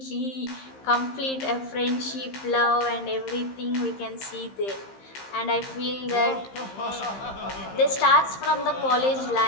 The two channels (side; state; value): right; late; 15 ms